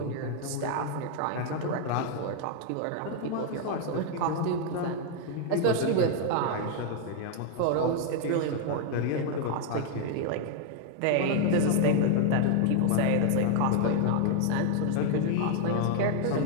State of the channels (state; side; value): different; both; correlation 0.00